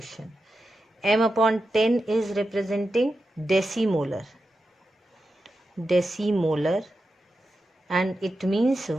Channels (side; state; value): both; normal; correlation 0.90